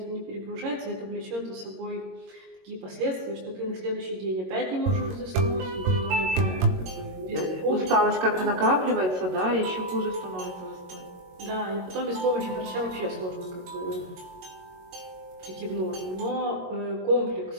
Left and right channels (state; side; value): late; left; 22 ms